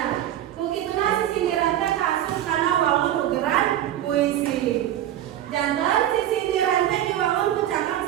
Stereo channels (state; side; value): quieter; left; 12.1 dB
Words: Kukituna sisindiran teh kaasup kana wangun ugeran puisi. Jantan sisindiran teh diwangun ku cangkang